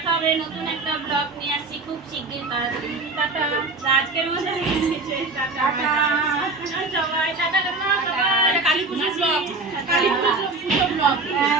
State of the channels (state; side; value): quieter; left; 3.5 dB